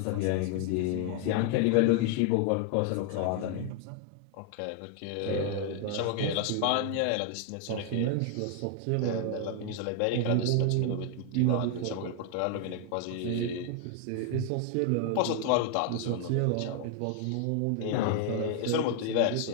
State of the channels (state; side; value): different; both; correlation 0.00